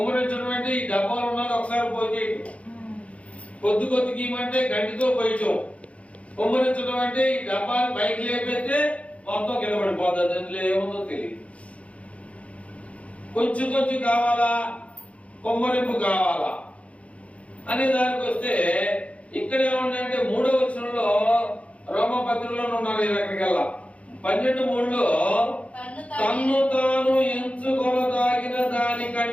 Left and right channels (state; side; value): late; right; 0.064 ms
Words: అంటే ఈ డబ్బాలు ఉన్నది ఒకసారి పోయేయటం, కొద్దికి ఇవ్వమంటే గంటితో పోయటం. కొమ్మరించడం అంటే ఈ డబ్బాలు పైకి లేపెడితే మొత్తం కింద పడిపోతుంది, అందులో ఏముందో తెలియదు. కొంచెం కావాలా, కొమ్మరింపు కావాలా అనే దానికి వస్తే ఇక్కడ ఏముందంటే 3వ వచనంలో రోమా పత్రికలో ఉన్నారు. అక్కడికల్లా 12:3లో తన్ను తాను ఎంచుకొనదాగిన